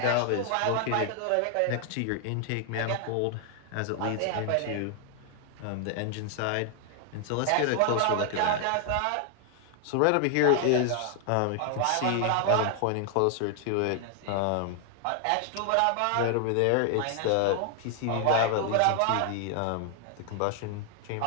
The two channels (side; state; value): both; different; correlation 0.00